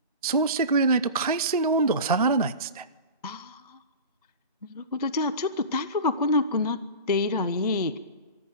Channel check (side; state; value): both; inverted; correlation -0.32